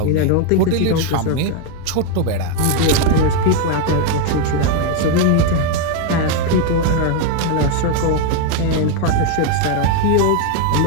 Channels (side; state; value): both; different; correlation 0.01